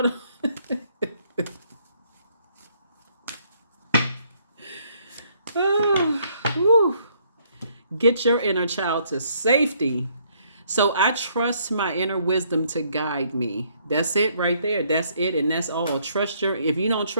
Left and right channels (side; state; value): both; inverted; correlation -0.68